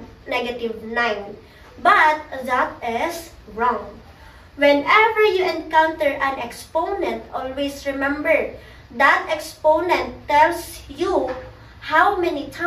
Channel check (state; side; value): identical; both; correlation 1.00